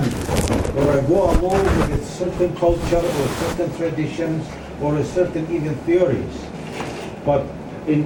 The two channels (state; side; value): identical; both; correlation 1.00